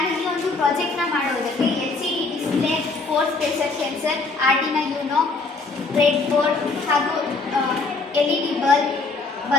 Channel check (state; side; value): quieter; right; 3.7 dB